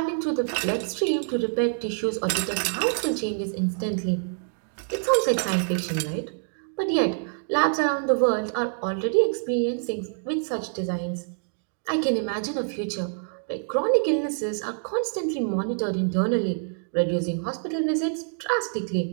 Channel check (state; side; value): silent; left; 61 dB below the other